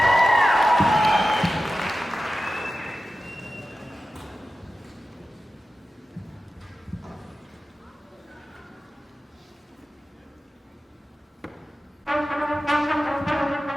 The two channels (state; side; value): normal; both; correlation 0.94